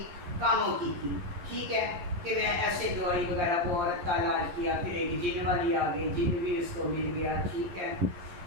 कामों की थी, ठीक है, कि मैं ऐसे दवाई वगैरह वो औरत का इलाज किया, फिर एक जिन वाली आ गई, जिन भी उसको मिल गया, ठीक है।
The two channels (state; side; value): late; left; 11 ms